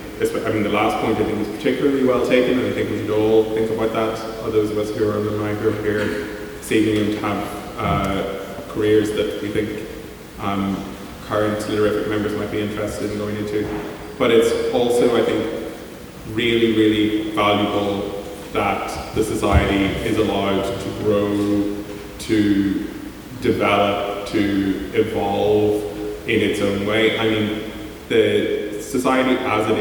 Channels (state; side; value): identical; both; correlation 1.00